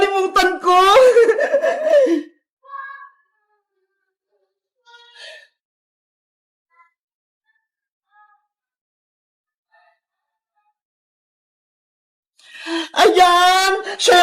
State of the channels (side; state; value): both; identical; correlation 1.00